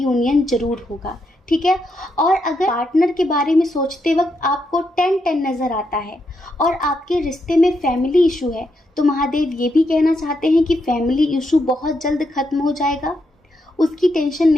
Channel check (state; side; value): normal; both; correlation 0.81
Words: जरूर होगा, ठीक है। और अगर पार्टनर के बारे में सोचते वक्त आपको 10-10 नज़र आता है और आपके रिश्ते में फैमिली इशू है, तो महादेव ये भी कहना चाहते हैं कि फैमिली इशू बहुत जल्द ख़त्म हो जाएगा। उसकी टेंशन